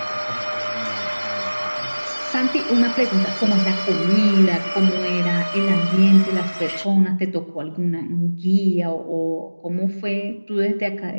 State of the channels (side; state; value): both; inverted; correlation -1.00